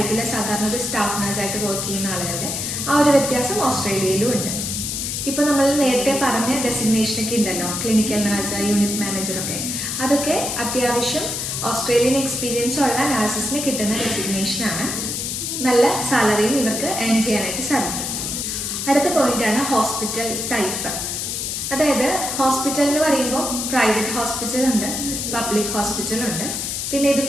സാധാരണ ഒരു സ്റ്റാഫ് നഴ്സായിട്ട് വർക്ക് ചെയ്യുന്ന ആളുകളുടെ. ആ ഒരു വ്യത്യാസം ഓസ്ട്രേലിയയിലും ഉണ്ട്. ഇപ്പോൾ നമ്മൾ നേരത്തെ പറഞ്ഞ ഡെസിഗ്നേഷനൊക്കെ ഉണ്ടല്ലോ, ക്ലിനിക്കൽ നഴ്സ്, യൂണിറ്റ് മാനേജറൊക്കെ. അതൊക്കെ അത്യാവശ്യം ഓസ്ട്രേലിയൻ എക്സ്പീരിയൻസ് ഉള്ള നഴ്സസിന് കിട്ടുന്ന ഡെസിഗ്നേഷനാണ്. നല്ല സാലറിയും ഇവർക്ക് ഏൺ ചെയ്യാനായിട്ട് സാധിക്കും. അടുത്ത പോയിന്റാണ് ഹോസ്പിറ്റൽ ടൈപ്പ്. അതായത് ഹോസ്പിറ്റൽ എന്ന് പറയുമ്പോൾ പ്രൈവറ്റ് ഹോസ്പിറ്റലുണ്ട്, പബ്ലിക് ഹോസ്പിറ്റലുണ്ട്. പിന്നെ ഇത്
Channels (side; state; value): left; noise; hiss, 3 dB below the sound